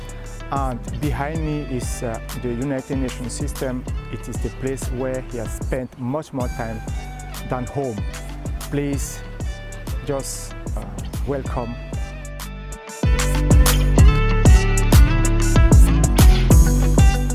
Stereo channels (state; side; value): identical; both; correlation 1.00